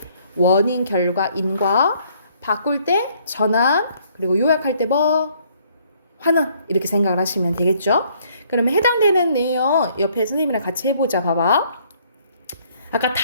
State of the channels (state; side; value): inverted; both; correlation -0.64